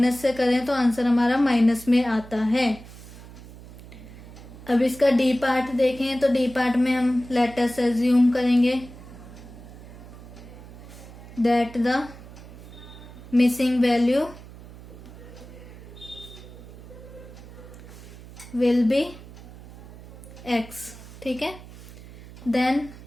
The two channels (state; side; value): noise; right; hum, 17 dB below the sound